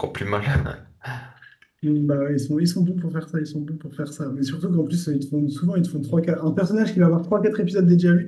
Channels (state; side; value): identical; both; correlation 1.00